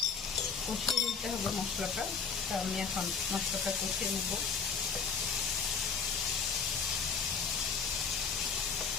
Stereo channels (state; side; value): quieter; right; 5.8 dB